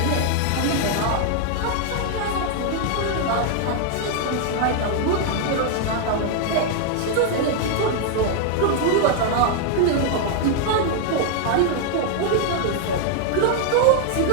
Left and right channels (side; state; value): both; different; correlation 0.00